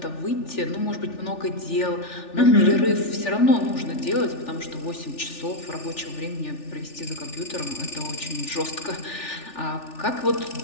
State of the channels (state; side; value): late; right; 3.4 ms